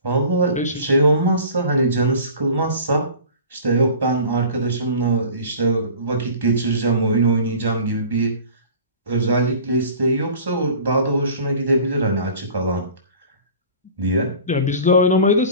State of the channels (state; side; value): inverted; both; correlation -0.42